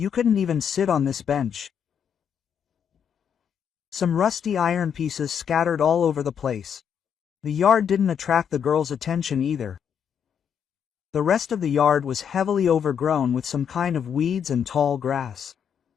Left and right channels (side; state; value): right; quieter; 7.9 dB